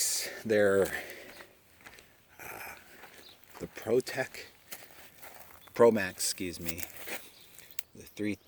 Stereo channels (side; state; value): both; identical; correlation 1.00